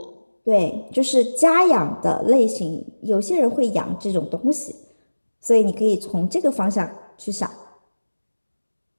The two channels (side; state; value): both; inverted; correlation -1.00